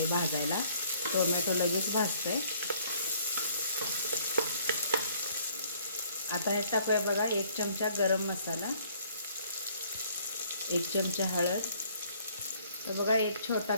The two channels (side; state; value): both; inverted; correlation -0.61